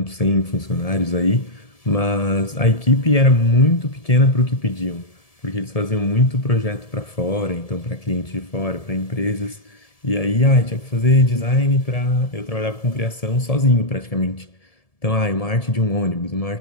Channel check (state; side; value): late; right; 1.7 ms